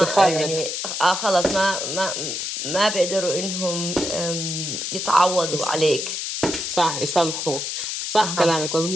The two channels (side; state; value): left; noise; hiss, 3 dB below the sound